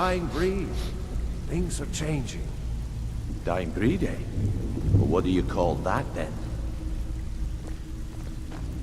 breed. Things are changing. Dying breed, eh? Well, what do you call that, then?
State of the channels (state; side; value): identical; both; correlation 1.00